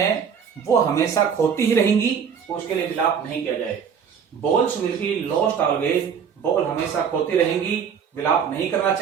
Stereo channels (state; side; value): quieter; left; 7.2 dB